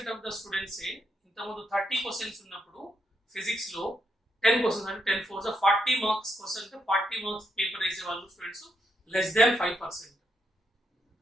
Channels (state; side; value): normal; both; correlation 0.79